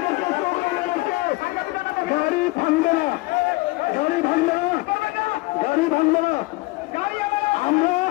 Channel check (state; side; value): quieter; right; 22.4 dB